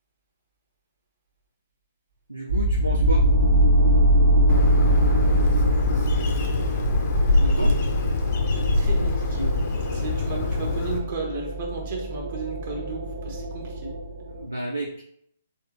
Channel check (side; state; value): both; inverted; correlation -0.46